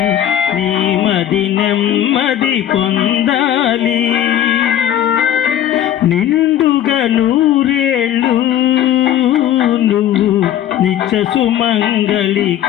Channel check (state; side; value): quieter; right; 11.1 dB